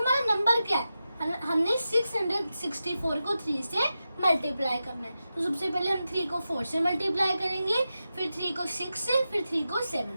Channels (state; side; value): inverted; both; correlation -0.91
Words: नंबर क्या है, हमने 664 को 3 से मल्टीप्लाई करना है। तो सबसे पहले हम 3 को 4 से मल्टीप्लाई करेंगे, फिर 3 को 6 से, फिर 3 को